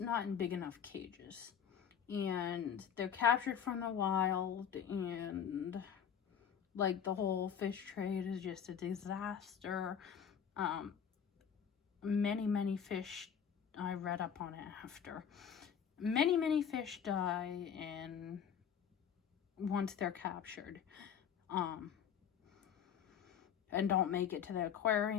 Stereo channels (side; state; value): right; quieter; 8.0 dB